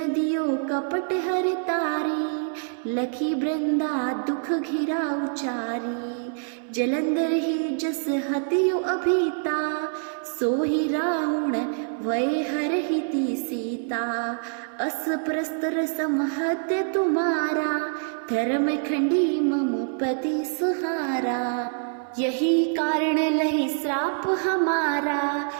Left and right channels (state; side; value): silent; left; 61 dB below the other